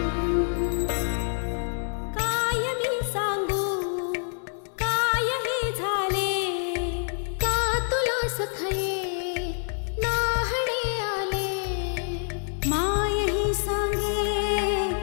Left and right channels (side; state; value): right; silent; digital silence